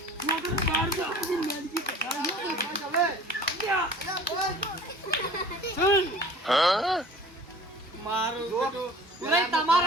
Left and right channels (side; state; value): both; normal; correlation 0.45